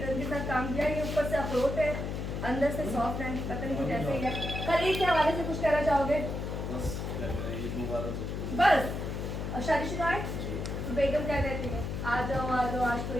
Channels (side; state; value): left; noise; hum, 4 dB below the sound